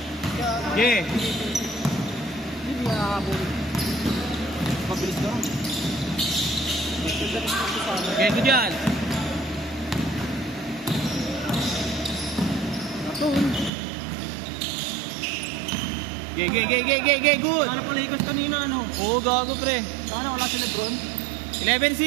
Yeah. Hindi nakakabuli. Mabilis lang. Okay, good yan. Gay, good. Ano pala ikas kanina, ano? Oo, gago pre. Sana wala si Lebron?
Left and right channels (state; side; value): drops out; left; at 13.7 s